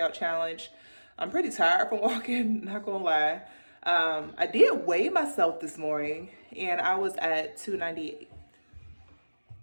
challenge. I'm pretty tired from walking, not gonna lie. I did weigh myself this morning and I was at 298.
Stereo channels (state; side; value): inverted; both; correlation -1.00